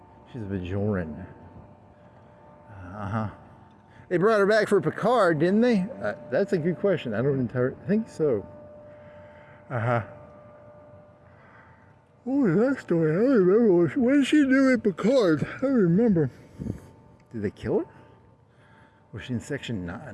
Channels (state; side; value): identical; both; correlation 1.00